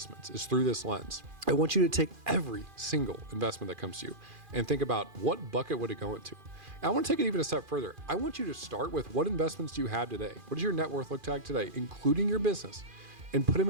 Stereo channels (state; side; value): late; left; 2.4 ms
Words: is through this lens. I want you to take every single investment that comes to you and think about what bucket would it go into. And I want to take it even a step further. I want you to start with what investments do you have today? What does your net worth look like today, including your business, and put them